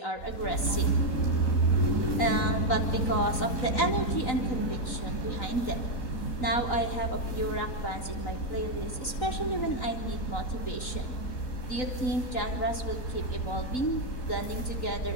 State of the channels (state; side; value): late; right; 3.9 ms